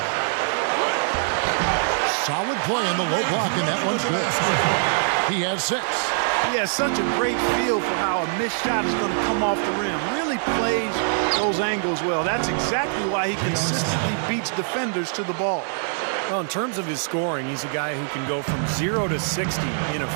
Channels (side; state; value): left; silent; digital silence